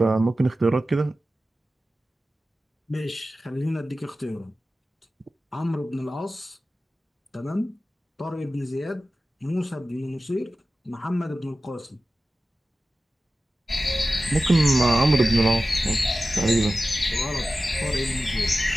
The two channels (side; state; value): both; normal; correlation 0.95